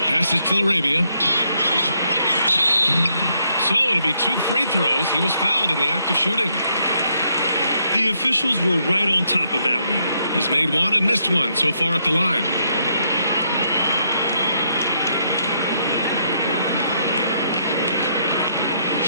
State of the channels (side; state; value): both; inverted; correlation -0.74